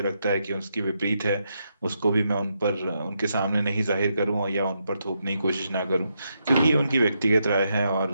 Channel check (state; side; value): inverted; both; correlation -0.81